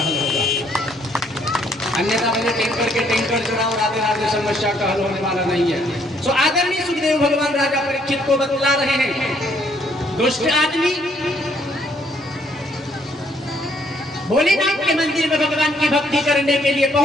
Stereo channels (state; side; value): normal; both; correlation 0.67